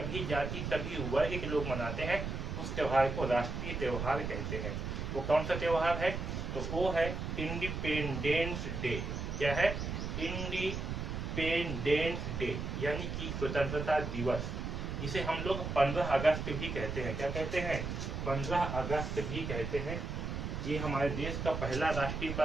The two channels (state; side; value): noise; right; rumble, 4 dB below the sound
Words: जाति, सभी वर्ग के लोग मनाते हैं, उस त्योहार को राष्ट्रीय त्योहार कहते हैं। वो कौन सा त्योहार है? तो वो है इंडिपेंडेंस डे। क्या है? इंडिपेंडेंस डे यानी कि स्वतंत्रता दिवस, जिसे हम लोग 15 अगस्त भी कहते हैं। क्या कहते हैं? 15 अगस्त भी कहते हैं। ये हमारे देश का पहला राष्ट्रीय